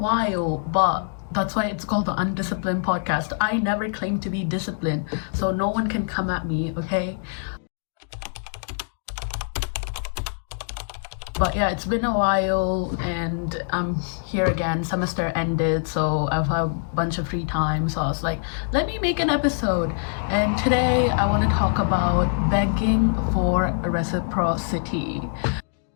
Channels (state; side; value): silent; right; digital silence